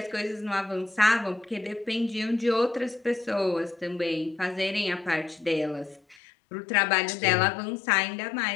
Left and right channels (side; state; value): right; drops out; at 6.2 s